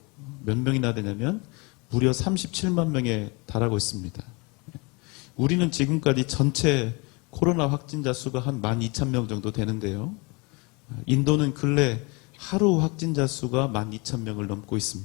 몇 명이나 되냐면 무려 37만 명에 달하고 있습니다. 우리는 지금까지 전체 코로나 확진자 수가 한 12,000명 정도 되는데요. 인도는 근래 하루 확진자 수가 12,000명을 넘고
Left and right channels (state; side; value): quieter; right; 28.9 dB